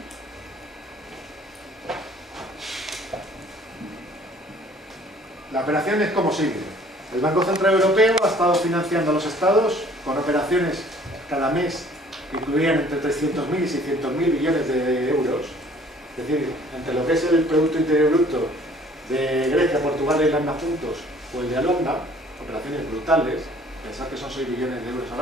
La operación es como sigue. El Banco Central Europeo ha estado financiando a los estados con operaciones cada mes que incluían entre 300.000 y 600.000 billones de euros. Es decir, entre lo que es el Producto Interior Bruto de Grecia, Portugal e Irlanda juntos, o el de Holanda, operaciones brutales, pensad que son 6 billones de euros al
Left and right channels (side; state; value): both; normal; correlation 0.55